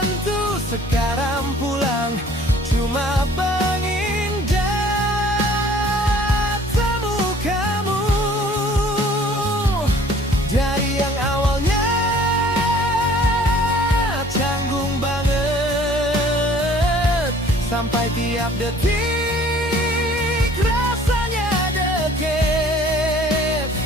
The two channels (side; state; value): both; normal; correlation 0.53